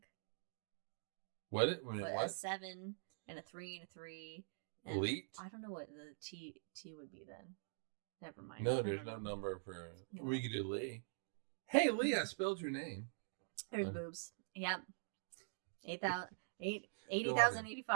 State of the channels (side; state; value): left; silent; digital silence